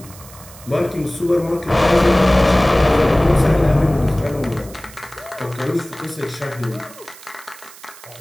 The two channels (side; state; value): right; noise; hiss, 20 dB below the sound